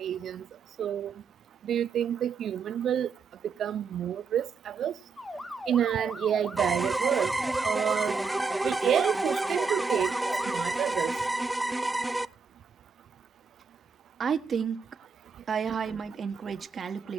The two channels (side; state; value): left; quieter; 5.3 dB